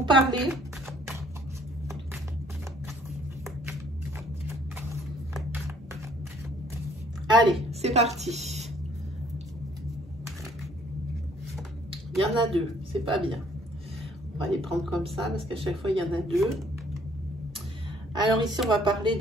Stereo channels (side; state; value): both; normal; correlation 0.61